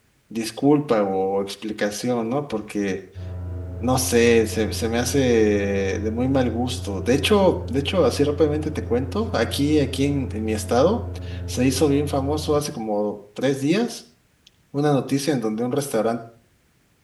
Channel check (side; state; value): both; identical; correlation 1.00